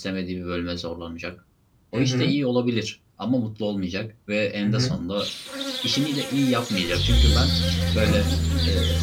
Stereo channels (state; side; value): identical; both; correlation 1.00